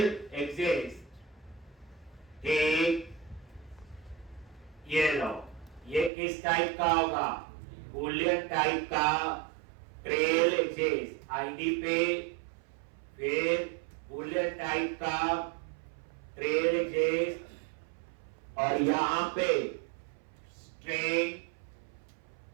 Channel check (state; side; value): drops out; left; at 6.1 s